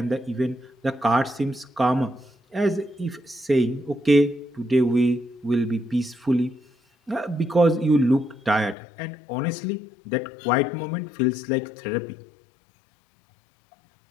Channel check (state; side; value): drops out; right; at 8.8 s